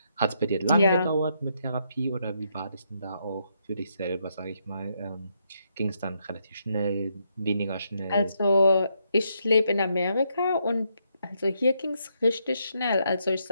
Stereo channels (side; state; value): both; inverted; correlation -0.77